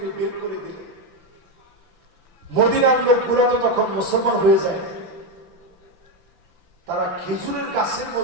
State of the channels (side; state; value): left; late; 5.9 ms